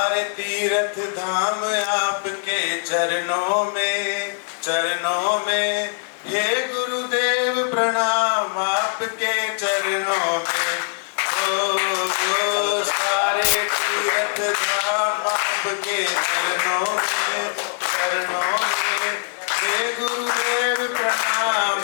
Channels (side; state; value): right; silent; digital silence